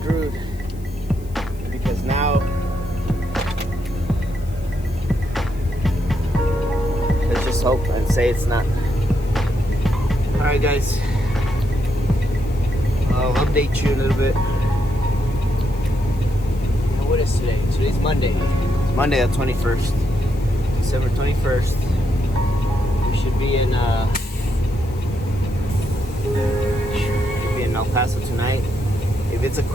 Because now, let's just hope and say it's not. Alright guys, I'll update you a little bit. What is today? Today's Monday. It's Monday the 21st. December 21st. We should be in El Paso tonight. If it's a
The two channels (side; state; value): left; noise; hiss, 25 dB below the sound